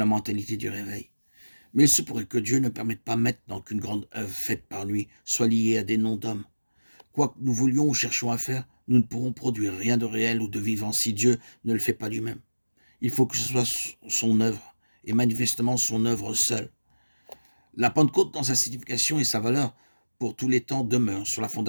mentalité du réveil. Mais il se pourrait que Dieu ne permette pas maintenant qu'une grande œuvre faite par lui soit liée à des noms d'hommes. Quoi que nous voulions ou cherchions à faire, nous ne pourrons produire rien de réel ou de vivant si Dieu ne le fait pas lui-même. Il faut que ce soit son œuvre, et manifestement son œuvre seule. La Pentecôte, dans sa signification et sa valeur, pour tous les temps, demeure sur la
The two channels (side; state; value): both; inverted; correlation -1.00